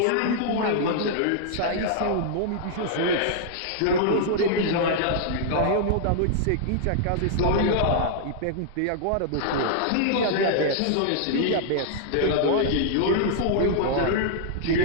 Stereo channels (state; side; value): different; both; correlation -0.01